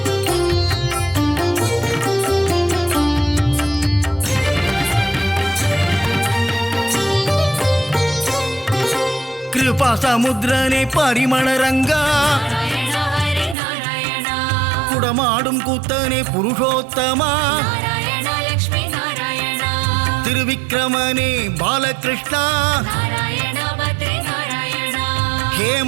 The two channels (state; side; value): drops out; left; at 13.6 s